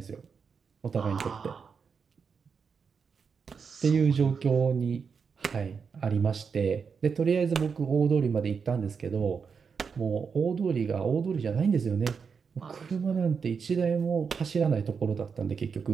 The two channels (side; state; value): left; quieter; 5.9 dB